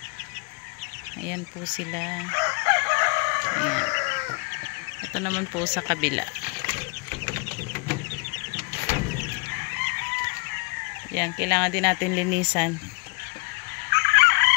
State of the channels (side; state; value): right; quieter; 31.3 dB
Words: Ayan po sila. Ayan. Ito naman po sa kabila. Yan, kailangan din natin linisan.